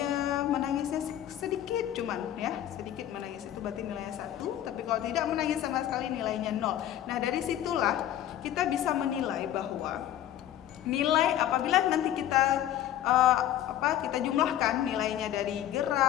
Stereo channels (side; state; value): right; quieter; 12.0 dB